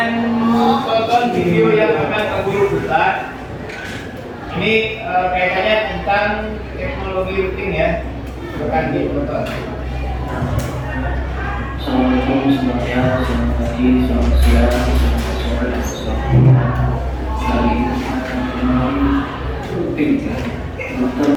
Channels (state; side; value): identical; both; correlation 1.00